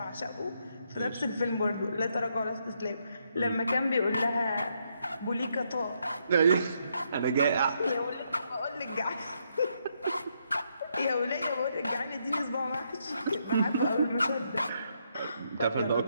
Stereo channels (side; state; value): both; inverted; correlation -0.77